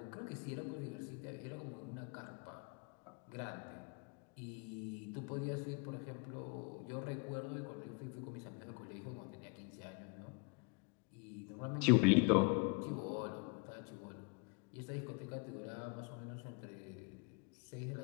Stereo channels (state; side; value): quieter; right; 33.8 dB